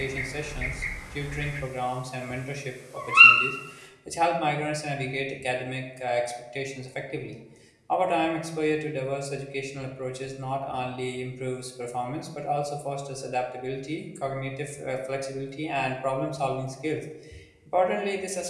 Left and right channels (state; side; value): identical; both; correlation 1.00